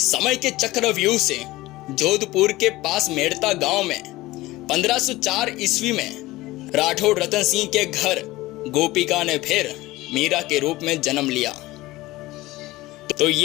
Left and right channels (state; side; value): quieter; right; 18.7 dB